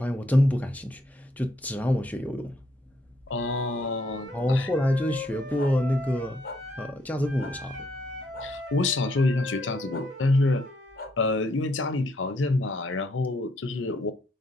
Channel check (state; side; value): normal; both; correlation 0.72